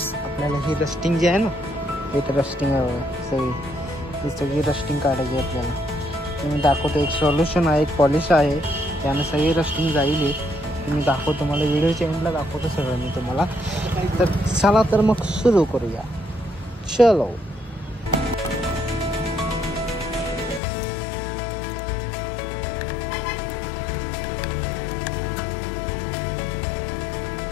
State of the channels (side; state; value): right; drops out; at 20.6 s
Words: आपल्याला हे रस्टिंग जे आहे ना, एक रस्टिंग आहे सगळी रस्टिंग काढायची आहे आपल्याला. मी दाखवतो. एक सोल्युशन आहे, एक पॉलिश आहे, त्यानं सगळी रस्टिंग जाईल. मी दाखवतो तुम्हाला, व्हिडिओच्या एंडला दाखवतो सगळं मी तुम्हाला. तर चला तर मग सुरू करूया. चलो.